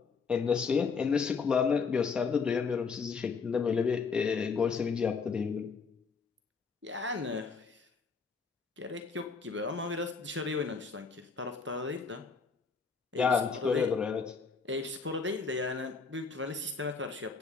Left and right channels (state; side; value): quieter; right; 5.2 dB